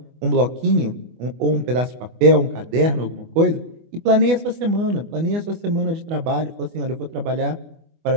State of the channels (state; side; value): late; left; 24 ms